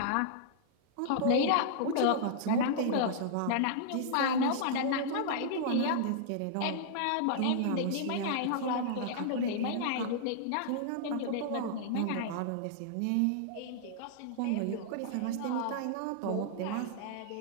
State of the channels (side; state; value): both; different; correlation -0.01